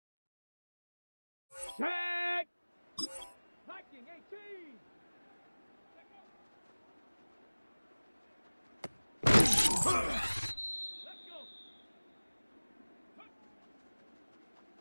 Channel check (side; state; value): both; inverted; correlation -1.00